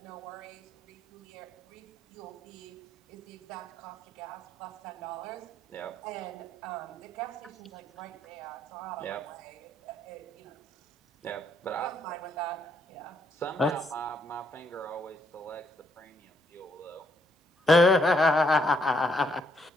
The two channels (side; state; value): both; normal; correlation 0.72